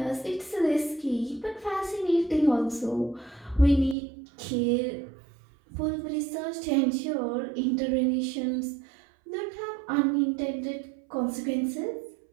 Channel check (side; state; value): left; drops out; at 4.0 s